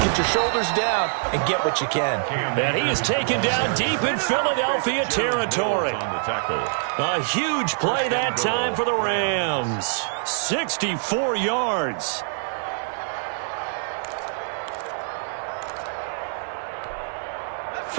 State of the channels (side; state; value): left; silent; digital silence